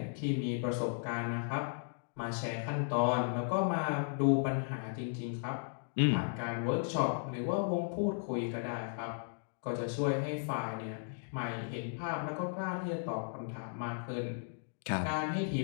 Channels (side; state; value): right; silent; digital silence